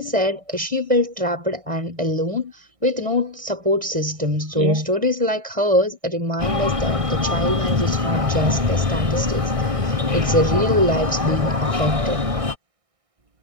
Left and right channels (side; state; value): left; late; 1.6 ms